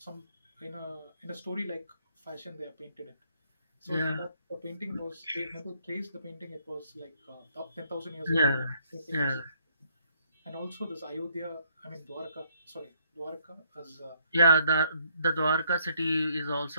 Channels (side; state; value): both; inverted; correlation -0.69